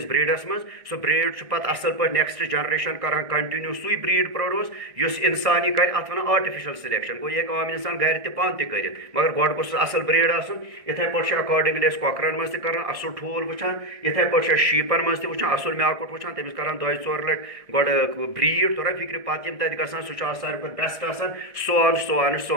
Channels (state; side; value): late; left; 1.7 ms